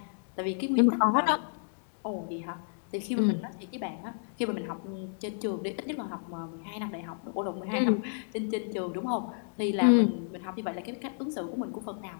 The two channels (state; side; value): silent; right; digital silence